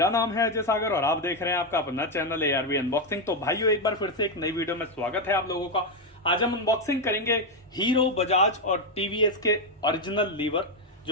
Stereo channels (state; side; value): normal; both; correlation 0.05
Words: नाम है अजय सागर और आप देख रहे हैं आपका अपना चैनल ARV अनबॉक्सिंग। तो भाइयों, एक बार फिर से एक नई वीडियो में स्वागत है आप लोगों का। आज हम अनबॉक्सिंग करेंगे हीरो, बजाज और टीवीएस के ओरिजिनल लीवर